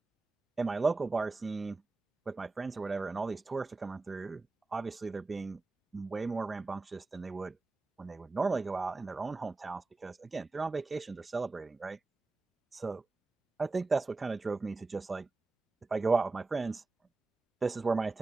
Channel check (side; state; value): left; quieter; 3.6 dB